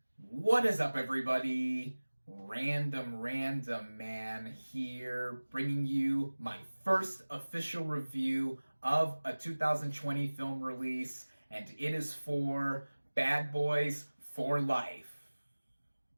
What is up, everybody? Random Man here, bringing you my first official review of a 2020 film release, and it is for Bad Boys for Life.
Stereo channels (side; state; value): both; inverted; correlation -1.00